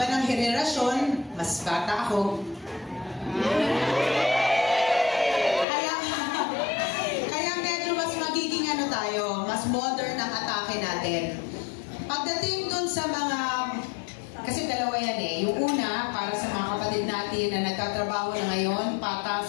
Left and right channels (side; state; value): right; drops out; at 5.7 s